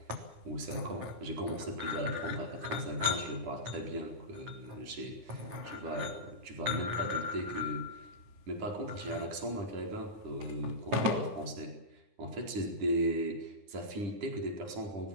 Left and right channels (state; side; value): late; left; 10 ms